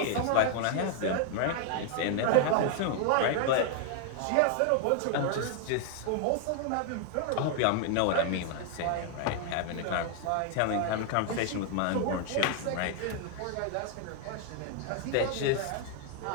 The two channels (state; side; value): different; both; correlation 0.00